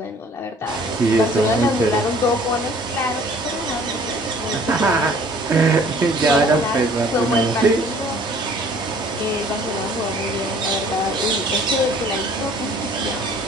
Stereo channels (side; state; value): both; normal; correlation 0.54